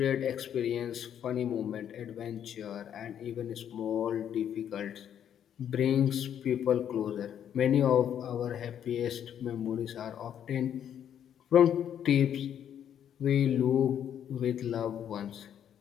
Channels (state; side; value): quieter; right; 9.5 dB